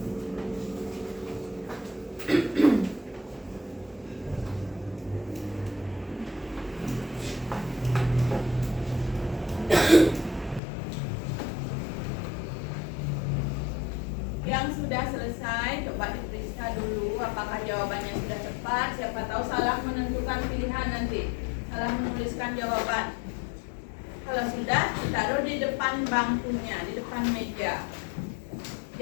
Yang sudah selesai, coba diperiksa dulu apakah jawabannya sudah tepat. Siapa tahu salah menentukan pilihan nanti, salah menuliskan jawaban. Kalau sudah, ditaruh di depan bangkunya, di depan meja.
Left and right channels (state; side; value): drops out; right; at 10.6 s